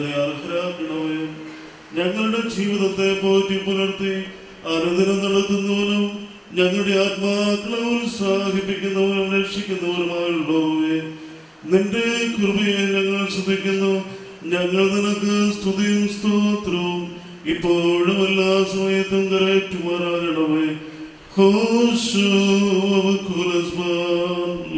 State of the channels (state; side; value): identical; both; correlation 1.00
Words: അർഹരാക്കണമേ. ഞങ്ങളുടെ ജീവിതത്തെ പോറ്റി പുലർത്തി അനുദിനം നടത്തുന്നവനും ഞങ്ങളുടെ ആത്മാക്കളെ ഉത്സാഹിപ്പിക്കുന്നവനും രക്ഷിക്കുന്നവനുമായുള്ളവേ, നിന്റെ കൃപയെ ഞങ്ങൾ ശ്രദ്ധിക്കുന്നു. ഞങ്ങൾ നിനക്ക് സ്തുതിയും സ്തോത്രവും ഇപ്പോഴും എല്ലാ സമയത്തും കരയറ്റുമാറാകണമേ.